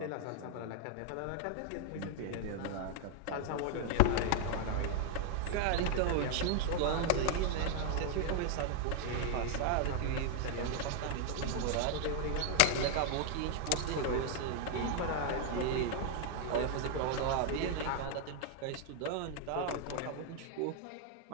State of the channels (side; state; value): both; different; correlation 0.00